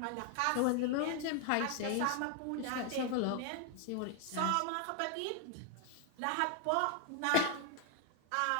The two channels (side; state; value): both; different; correlation 0.00